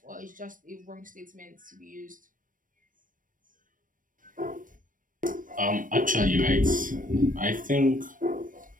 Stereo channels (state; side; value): late; left; 0.39 ms